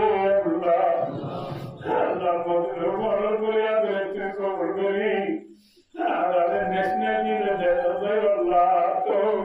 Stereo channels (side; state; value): both; identical; correlation 1.00